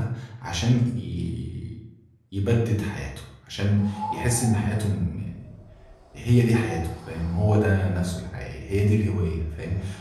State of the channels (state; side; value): identical; both; correlation 1.00